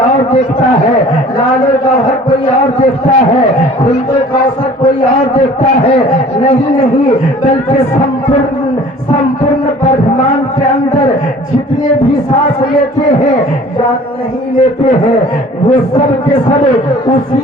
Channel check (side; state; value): both; normal; correlation 0.49